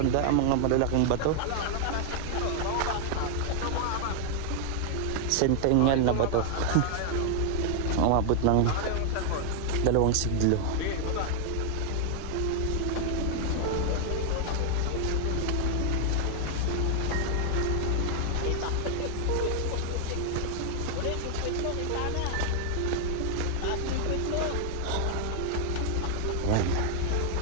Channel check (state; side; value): different; both; correlation 0.00